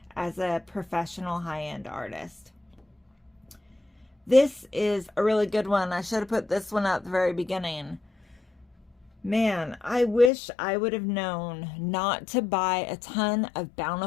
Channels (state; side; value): drops out; right; at 10.3 s